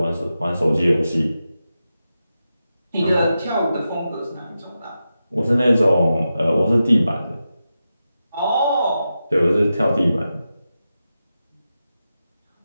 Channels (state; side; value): inverted; both; correlation -0.90